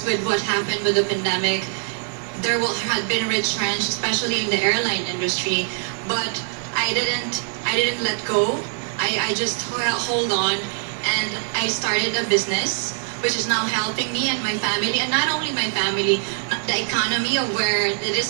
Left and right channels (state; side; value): silent; left; 56 dB below the other